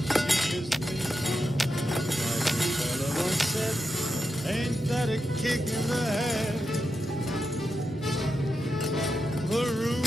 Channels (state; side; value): normal; both; correlation 0.88